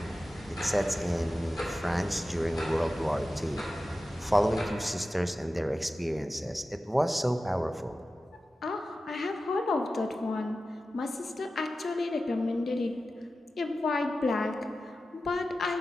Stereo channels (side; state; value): both; normal; correlation 0.94